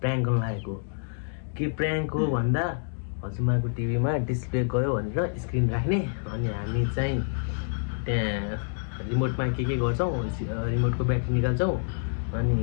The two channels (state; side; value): silent; right; digital silence